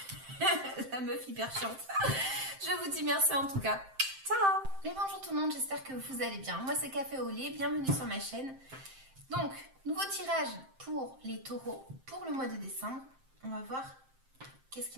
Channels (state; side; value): late; left; 7.6 ms